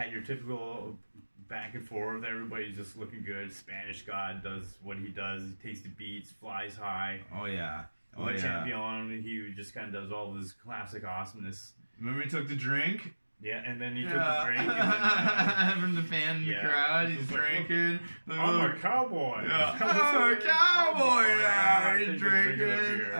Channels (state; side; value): inverted; both; correlation -1.00